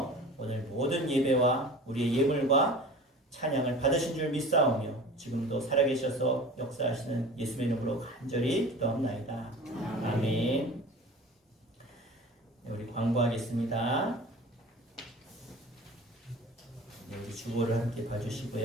오늘 모든 예배와 우리의 예물과 찬양을 받으신 줄 믿사오며 지금도 살아계셔서 역사하시는 예수의 이름으로 간절히 기도합나이다. 아멘. 네, 우리 광고하겠습니다. 네, 우리 주보를 함께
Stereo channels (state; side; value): normal; both; correlation 0.39